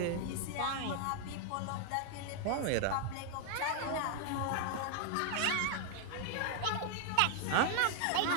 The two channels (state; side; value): different; both; correlation 0.00